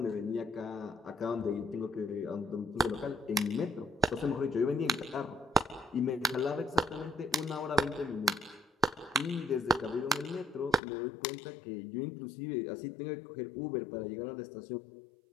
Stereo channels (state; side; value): drops out; right; at 10.8 s